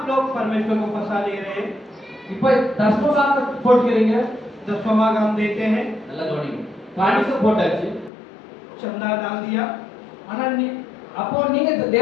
लोग परमेश्वर को फंसा ले रहे हैं। இப்ப தசம பாகம் போட்டுக்கிறீங்க दसवां भाग हम देते हैं, நல்லா கவனிங்க காணிக்கை போட்டாச்சு चंदा डाल दिया, ஆனா நீ அப்போ நீங்க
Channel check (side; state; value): right; drops out; at 8.1 s